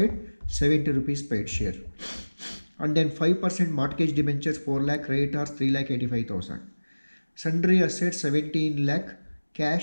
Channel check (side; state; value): both; inverted; correlation -1.00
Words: 70 rupees paid share. And then 5% mortgage debentures 4 lakh, creditors 3,85,000. Sundry assets 17 lakh,